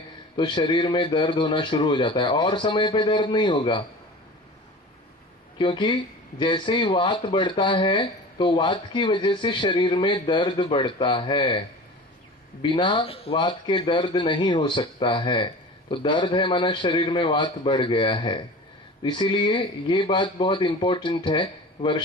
तो शरीर में दर्द होना शुरू हो जाता है। और समय पे दर्द नहीं होगा, क्योंकि जैसे ही वात बढ़ता है तो वात की वजह से शरीर में दर्द बढ़ता है। बिना वात के दर्द नहीं हो सकता है। तो दर्द है माना शरीर में वात बढ़ गया है। इसीलिए ये बात बहुत इंपॉर्टेंट है।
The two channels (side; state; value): both; normal; correlation 0.37